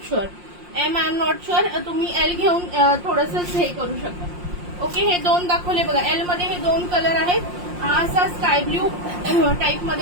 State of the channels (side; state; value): left; late; 5.6 ms